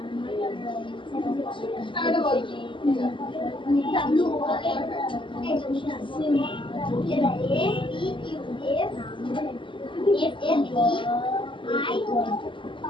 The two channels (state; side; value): late; right; 0.24 ms